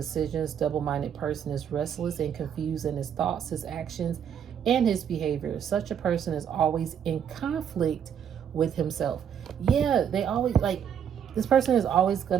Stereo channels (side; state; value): left; quieter; 8.5 dB